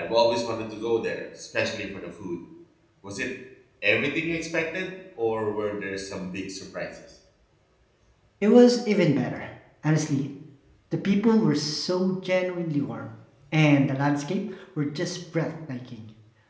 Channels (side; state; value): both; identical; correlation 1.00